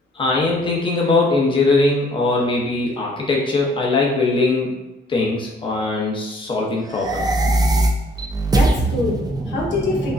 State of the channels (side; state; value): both; normal; correlation 0.60